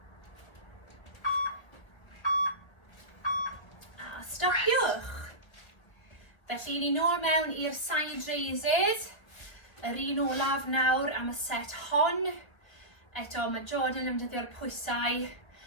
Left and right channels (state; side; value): late; right; 1.3 ms